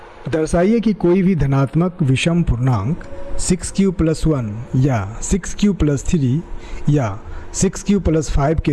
दर्शाइए कि कोई भी धनात्मक विषम पूर्णांक 6q + 1 या 6q + 3 या 6q + 5 के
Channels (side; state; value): both; identical; correlation 1.00